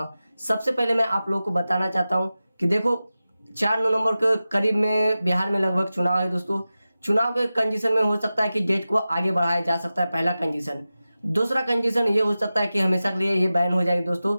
हूँ। सबसे पहले मैं आप लोगों को बताना चाहता हूँ कि देखो 4 नवंबर के करीब में बिहार में लगभग चुनाव है दोस्तों। चुनाव के कंडीशन में हो सकता है कि डेट को आगे बढ़ाया जा सकता है, पहला कंडीशन। दूसरा कंडीशन ये हो सकता है कि हमेशा के लिए ये बैन हो जाएगी दोस्तों।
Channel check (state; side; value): inverted; both; correlation -0.95